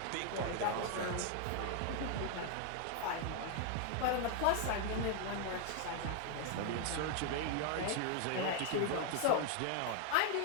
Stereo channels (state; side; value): different; both; correlation 0.00